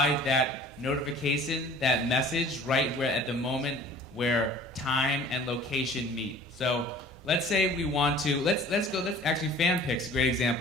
that notification, that message right where at the moment where time and location meet. So let's say we want to, let's actually FanPix, a great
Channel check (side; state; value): both; normal; correlation 0.47